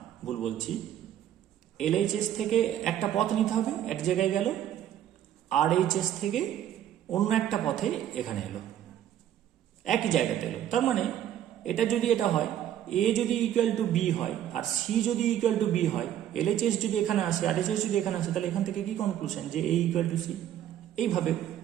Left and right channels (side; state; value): left; quieter; 11.0 dB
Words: ভুল বলছি, এলএইচএস থেকে একটা পথ নিতে হবে, এক জায়গায় গেল, আরএইচএস থেকে অন্য একটা পথে এখানে এলো, একই জায়গাতে এলো। তার মানে এটা যদি এটা হয়, এ যদি ইকুয়াল টু বি হয় আর সি যদি ইকুয়াল টু বি হয়, এলএইচএস যদি এখানে আসে আর এইচএস যদি এখানে আসে, তাহলে এখান থেকে কি কনক্লুশন, যে এ ইকুয়াল টু সি। এইভাবে